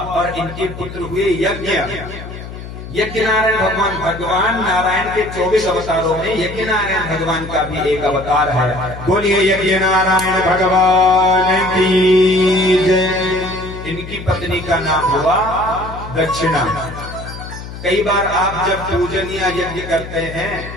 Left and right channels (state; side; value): noise; left; hum, 12 dB below the sound